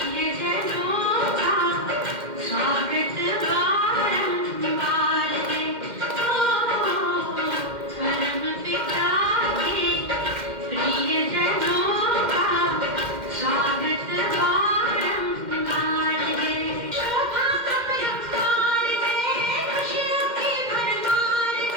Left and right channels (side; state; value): left; late; 2.1 ms